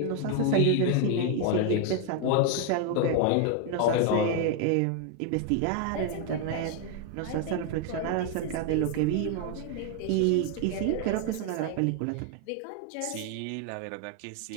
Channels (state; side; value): different; both; correlation 0.01